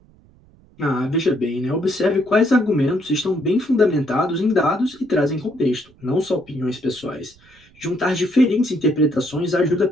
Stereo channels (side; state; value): right; noise; rumble, 28 dB below the sound